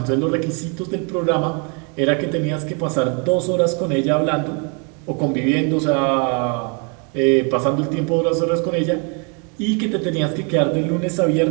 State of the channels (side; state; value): left; quieter; 35.9 dB